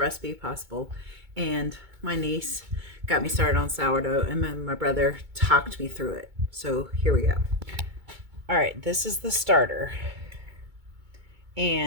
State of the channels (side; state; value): left; late; 2.2 ms